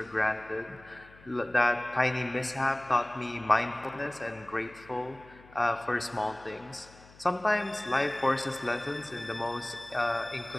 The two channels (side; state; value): left; noise; hum, 24 dB below the sound